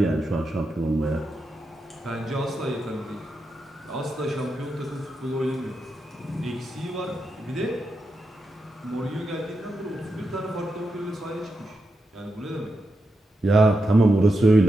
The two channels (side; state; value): both; normal; correlation 0.87